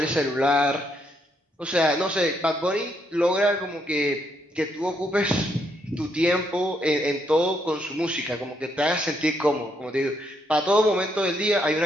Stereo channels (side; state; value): both; normal; correlation 0.75